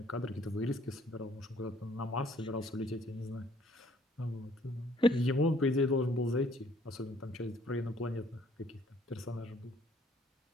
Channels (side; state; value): both; normal; correlation 0.61